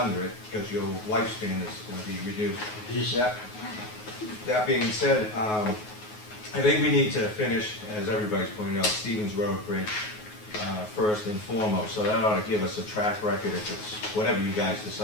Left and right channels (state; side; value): late; right; 9.4 ms